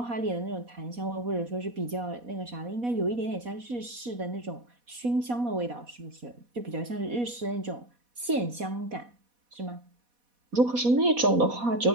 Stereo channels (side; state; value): left; late; 4.1 ms